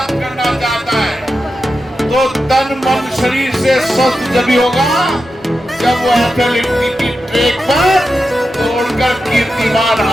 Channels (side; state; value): both; normal; correlation 0.90